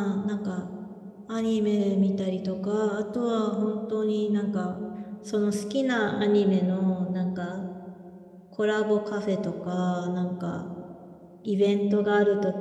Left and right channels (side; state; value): both; identical; correlation 1.00